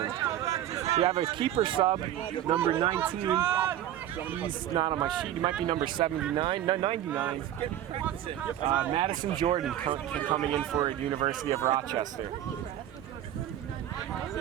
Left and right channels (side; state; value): left; quieter; 11.9 dB